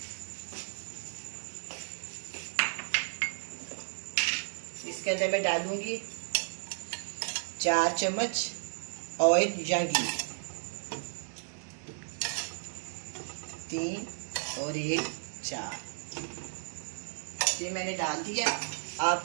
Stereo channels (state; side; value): silent; left; digital silence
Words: इसके अंदर मैं डालूँगी 4 चम्मच ऑयल या घी, 3 और 1 4। ये मैंने डाल दिया। आप